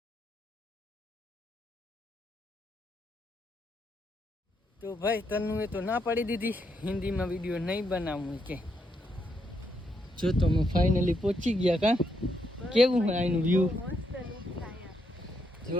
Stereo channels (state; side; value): normal; both; correlation 0.78